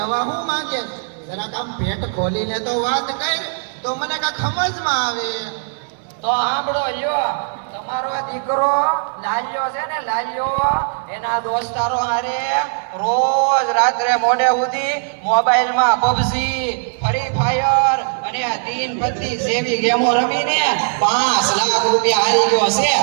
શું માંગે? જરાક આમ પેટ ખોલીને તો વાત કર, તો મને કાંઈ સમજમાં આવે. તો સાંભળો લ્યો, તમારો દીકરો લાલ્યો છે ને, લાલ્યો એના દોસ્તારો હારે રોજ રાત્રે મોડે સુધી મોબાઈલમાં પબજી, ફ્રી ફાયર અને તીન પત્તી જેવી ગેમો રમીને 5 લાખ રૂપિયા હારી ગયો છે.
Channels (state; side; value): silent; left; 56 dB below the other